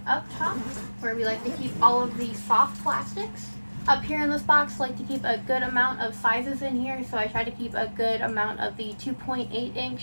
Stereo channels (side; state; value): both; inverted; correlation -1.00